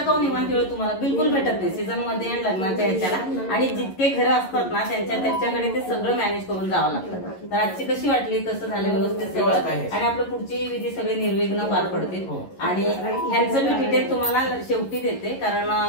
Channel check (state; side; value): late; right; 11 ms